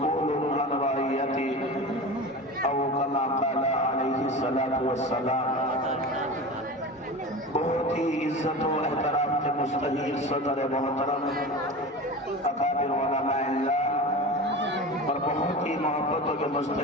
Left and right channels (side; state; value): both; normal; correlation 0.31